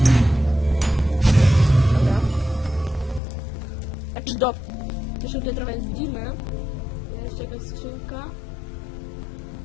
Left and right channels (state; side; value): drops out; right; at 3.2 s